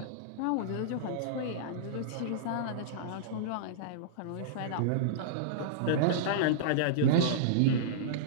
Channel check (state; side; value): different; both; correlation -0.03